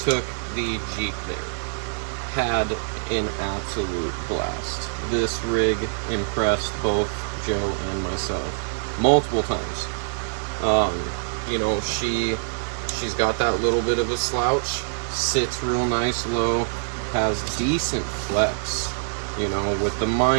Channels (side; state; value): left; silent; digital silence